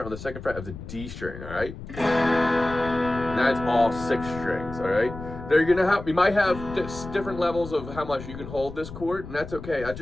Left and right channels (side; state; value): left; noise; rumble, 12 dB below the sound